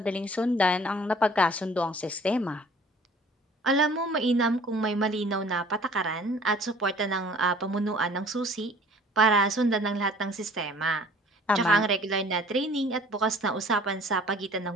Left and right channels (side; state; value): both; normal; correlation 0.51